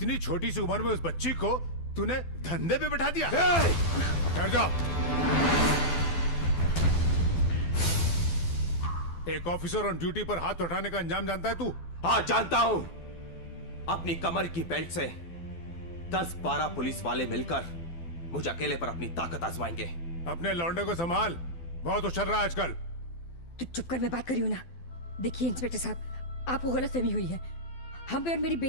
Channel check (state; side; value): late; right; 12 ms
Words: छोटी सी उम्र में उस बच्ची को तूने धंधे पे बैठा दिया। ठहर जाओ। एक ऑफिसर ऑन ड्यूटी पर हाथ उठाने का अंजाम जानता है तू? हाँ जानता हूं। अपनी कमर की बेल्ट से 10-12 पुलिस वाले मिलकर मुझे अकेले पर अपनी ताकत आजमाएंगे। अपने लौंडे को संभाल, बहुत उछल रहा है आजकल। तू चुप कर, मैं बात कर रही हूं ना। देखिए इंस्पेक्टर साहब, आपको गलतफहमी हुई है। हम पे और मेरी